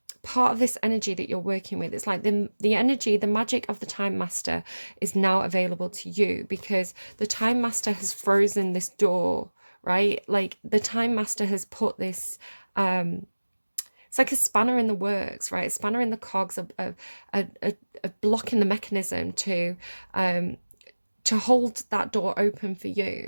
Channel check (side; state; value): both; inverted; correlation -1.00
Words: part of this energy that you're working with. It's like the energy, the magic of the Time Master is now available to you, because the Time Master has frozen this door, right? Like the Time Master has put this, it's like a spanner in the works, right? A spanner in the cogs, a block in the mechanism to hold that door open for